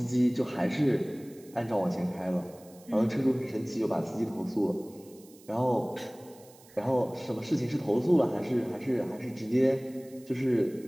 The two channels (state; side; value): noise; right; hiss, 25 dB below the sound